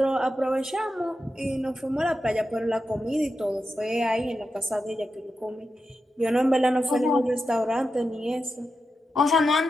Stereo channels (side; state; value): both; normal; correlation 0.89